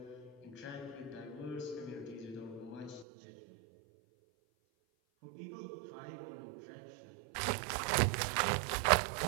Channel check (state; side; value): drops out; left; at 3.1 s